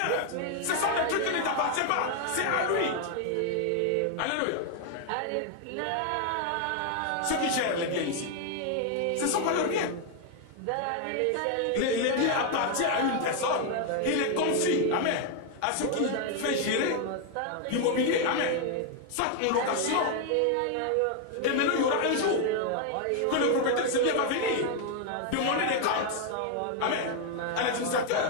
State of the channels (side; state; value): both; different; correlation 0.00